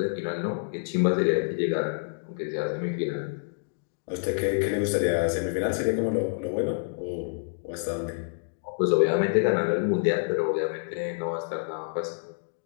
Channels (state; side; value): silent; right; digital silence